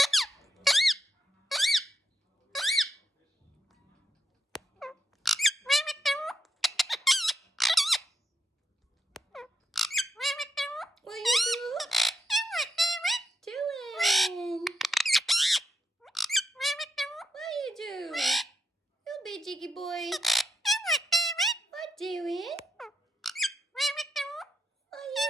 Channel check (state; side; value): normal; both; correlation 0.79